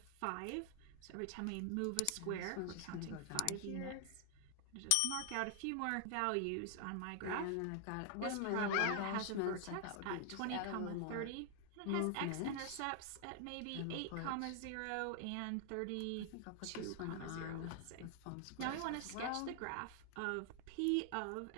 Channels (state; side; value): different; both; correlation 0.00